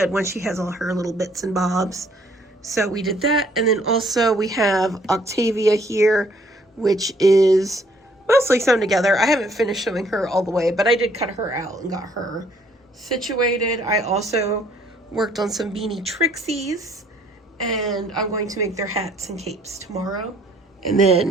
when she has all her little bits and bobs. So we did that. And then also we have Octavia here, which is mostly sewn together. I haven't finished sewing her all the way, but I did cut her out and got her situated. I also worked on some beanie Trixies, and I'm going to make their hats and capes tomorrow. And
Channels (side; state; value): both; normal; correlation 0.63